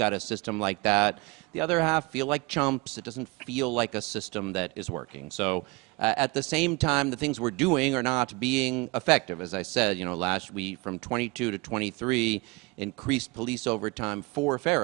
a system like that, the other half feel like chumps. It doesn't feel like a system that is working. So at the same time, the things we're doing are not being effective. As I said, you know, last week from 22 to 23, increased police overtime for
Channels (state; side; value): quieter; left; 25.7 dB